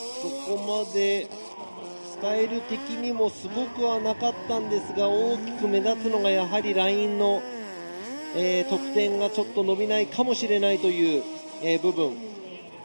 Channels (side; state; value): both; inverted; correlation -1.00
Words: そこまでスタイル的にもすごくはなかったんですが、大きく目立つのがやはりラインの、得点がちょっと伸びないかもしれないという、部分。